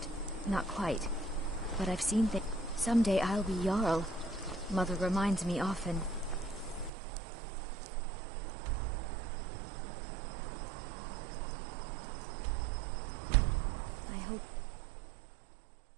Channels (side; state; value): left; drops out; at 6.9 s